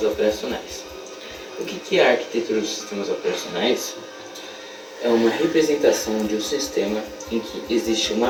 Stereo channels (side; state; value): both; identical; correlation 1.00